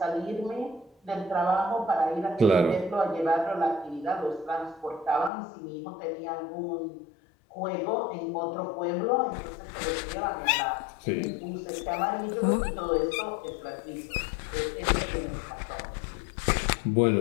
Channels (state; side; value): drops out; right; at 5.3 s